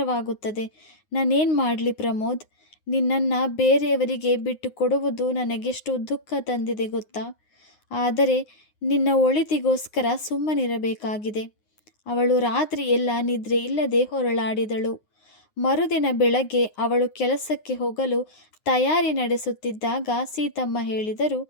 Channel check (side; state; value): right; late; 9.6 ms